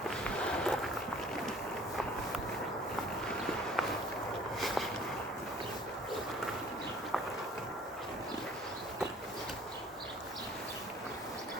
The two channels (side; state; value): both; normal; correlation 0.52